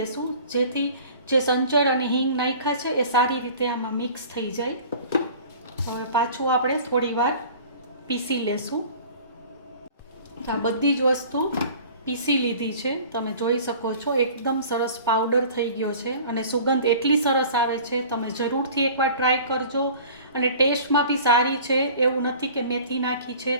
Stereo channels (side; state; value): both; inverted; correlation -0.45